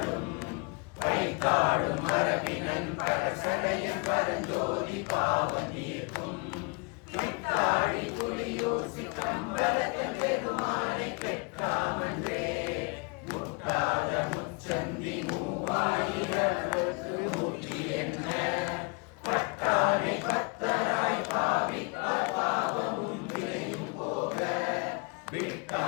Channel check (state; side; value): quieter; right; 32.2 dB